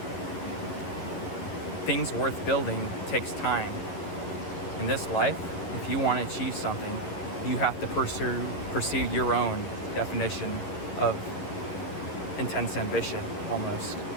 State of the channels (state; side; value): late; right; 11 ms